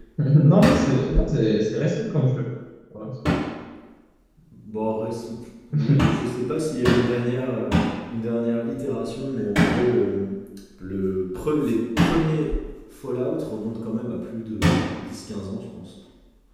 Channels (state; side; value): identical; both; correlation 1.00